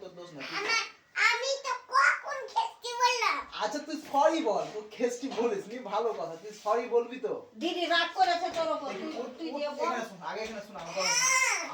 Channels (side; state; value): both; identical; correlation 1.00